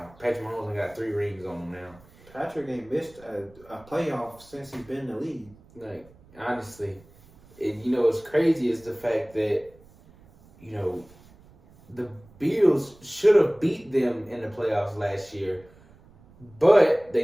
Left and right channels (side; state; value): right; noise; rumble, 26 dB below the sound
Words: Patrick Mahomes only got 3 rings on him now. Patrick ain't missed a playoff since he's been in the league. Like, honestly, and what's crazy is the fact that the Bills should have beat them in the playoffs last year, but